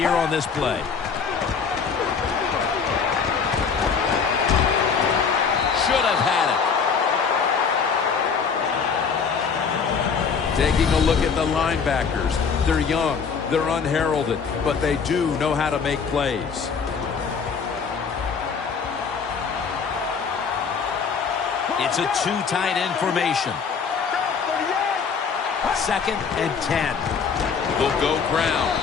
on this play. Should have had it. Taking a look at the linebackers. They're young. They're unheralded, but they do know how to make plays. It's a 2 tight end formation. 2nd and 10. They'll go ground.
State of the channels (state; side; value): quieter; right; 5.9 dB